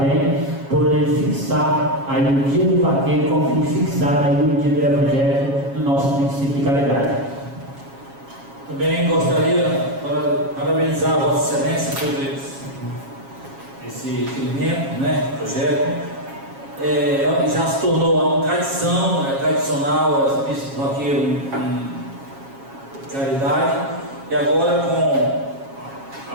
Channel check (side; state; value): left; late; 7.3 ms